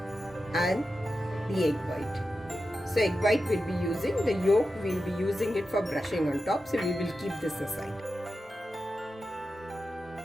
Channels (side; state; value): both; normal; correlation 0.91